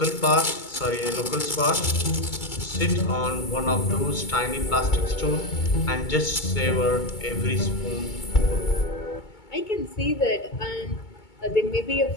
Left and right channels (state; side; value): late; right; 2.2 ms